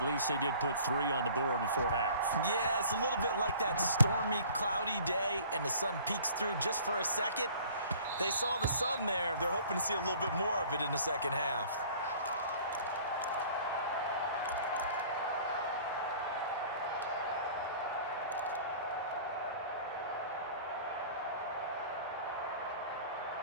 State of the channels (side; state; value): both; inverted; correlation -0.49